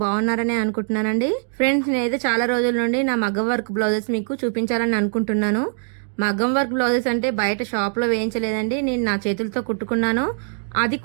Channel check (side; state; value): left; silent; 60 dB below the other